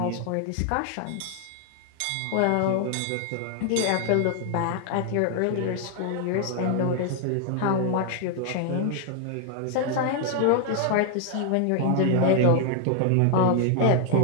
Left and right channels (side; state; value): both; different; correlation 0.00